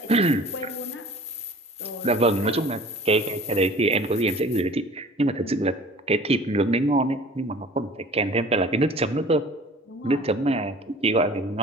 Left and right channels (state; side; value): normal; both; correlation 0.45